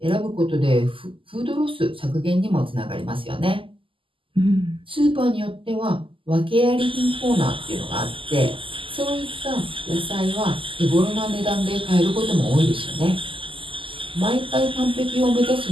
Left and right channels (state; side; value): late; left; 0.25 ms